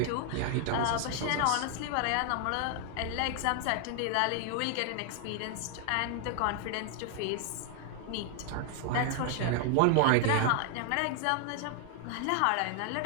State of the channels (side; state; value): both; different; correlation 0.00